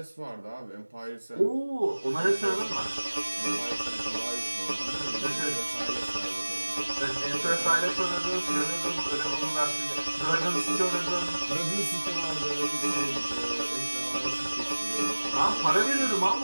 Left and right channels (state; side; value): inverted; both; correlation -1.00